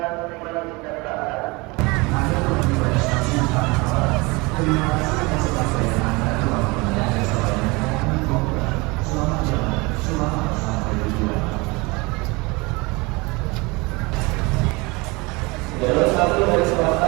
Jalur 1 dari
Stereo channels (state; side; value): quieter; left; 25.4 dB